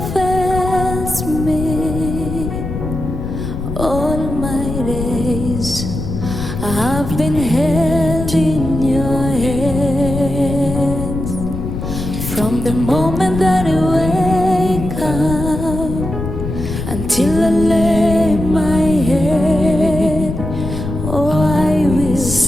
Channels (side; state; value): left; noise; rumble, 5 dB below the sound